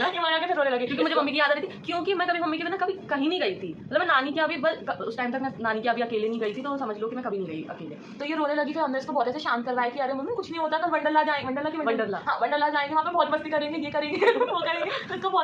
वहाँ जाके फिर रोने लगे क्योंकि मुझे मम्मी की याद आ रही थी, क्योंकि मैं कभी मम्मी के बिना कभी कहीं नहीं गई थी, मतलब मैं नानी के अभी बस उस टाइम तक मैं नानी के अभी अकेले नहीं गई थी, तो समझ लो कि मैं कभी नहीं गई अकेले। तो ये रोने लगी, फिर हमने इसको बहुत ऐसे शांत करवाया कि अरे मम्मी कुछ नहीं होता, कल वंडरला जाएंगे, वंडरला जाएंगे, वहाँ पे बहुत मस्ती करेंगे, ये करेंगे वो करेंगे, तो इसको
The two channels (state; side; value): identical; both; correlation 1.00